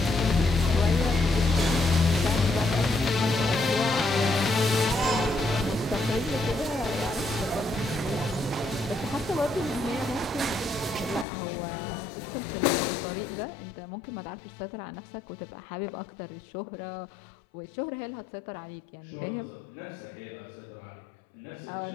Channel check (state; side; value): drops out; right; at 11.2 s